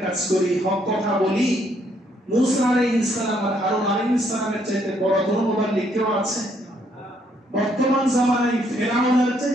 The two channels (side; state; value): both; normal; correlation 0.70